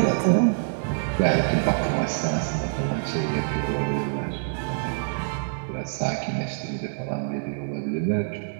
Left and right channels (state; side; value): silent; left; digital silence